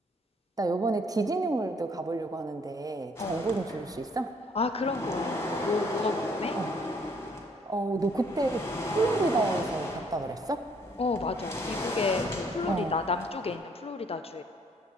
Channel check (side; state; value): both; normal; correlation 0.64